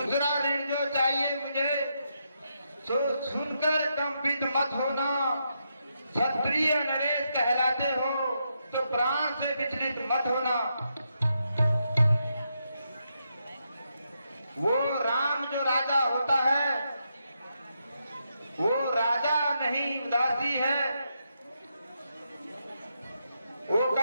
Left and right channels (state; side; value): inverted; both; correlation -0.82